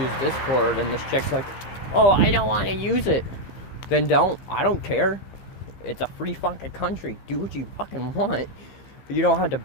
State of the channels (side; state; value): right; late; 15 ms